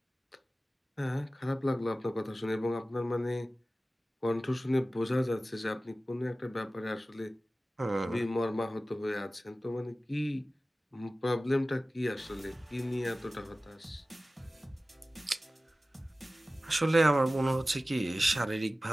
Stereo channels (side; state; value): both; normal; correlation 0.96